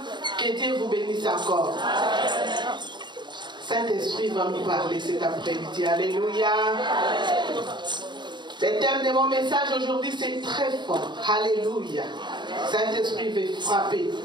Que Dieu vous bénisse encore. Saint-Esprit va nous parler cet après-midi. Alléluia. Le thème de mon message aujourd'hui, c'est très fort. Alléluia. Saint-Esprit veut frapper.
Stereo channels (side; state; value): left; late; 0.22 ms